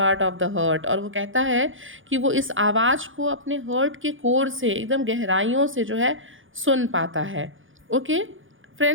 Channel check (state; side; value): late; left; 0.58 ms